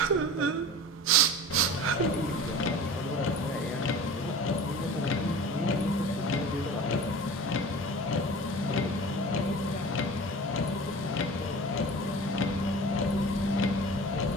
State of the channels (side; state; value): both; normal; correlation 0.38